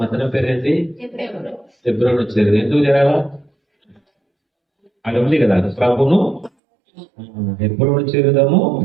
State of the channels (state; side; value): drops out; left; at 6.5 s